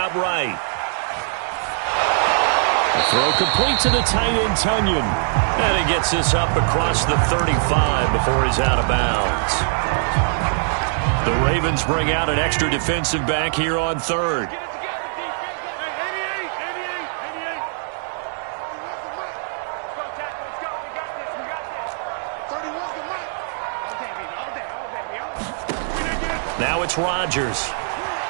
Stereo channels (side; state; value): left; silent; digital silence